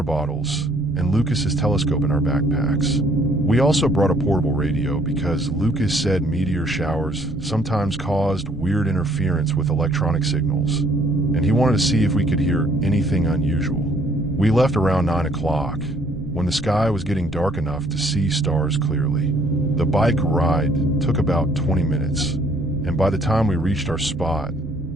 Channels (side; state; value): right; noise; rumble, 18 dB below the sound